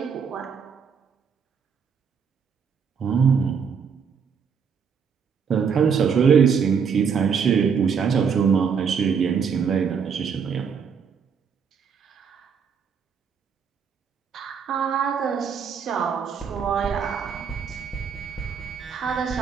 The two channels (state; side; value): quieter; left; 6.5 dB